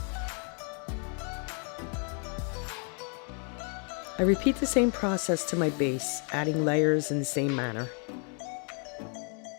I repeat the same process to my base, adding layers in the same manner.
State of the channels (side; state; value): right; quieter; 40.0 dB